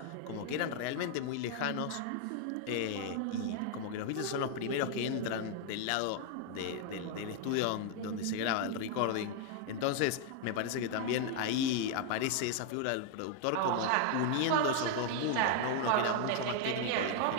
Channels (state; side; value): different; both; correlation 0.00